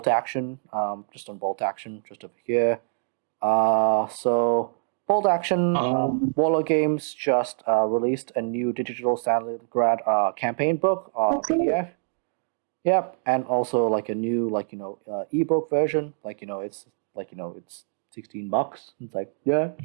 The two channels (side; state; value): left; silent; digital silence